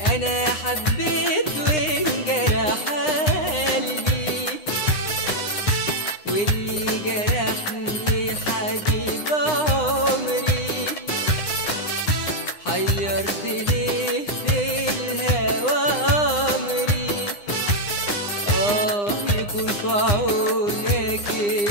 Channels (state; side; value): late; right; 9.8 ms